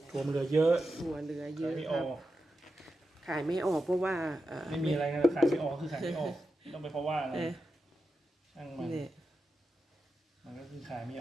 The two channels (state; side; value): normal; both; correlation 0.90